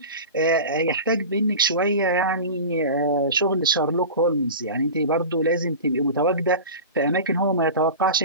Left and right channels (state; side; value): inverted; both; correlation -0.31